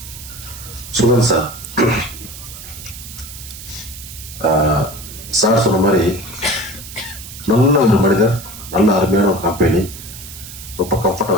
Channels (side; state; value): right; noise; hiss, 13 dB below the sound